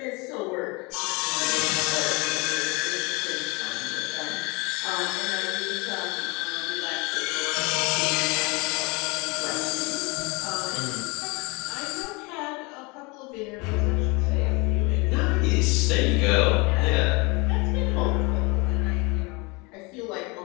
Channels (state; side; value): quieter; right; 27.3 dB